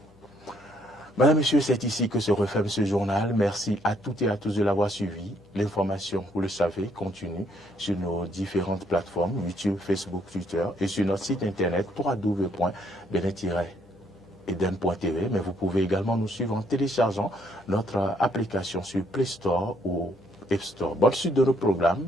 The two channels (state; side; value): noise; left; hum, 28 dB below the sound